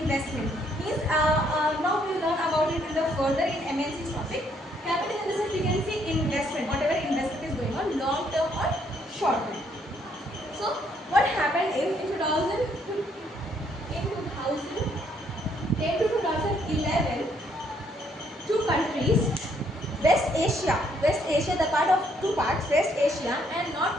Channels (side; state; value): both; normal; correlation 0.69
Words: Means now we will learn about it in the further in MNC topic. Capital in the sense we can say investment, whatever investment is going on, long-term or short-term. So what happened in 2010 to 2011, two countries, West Asia, the part of two parts, West Asia and North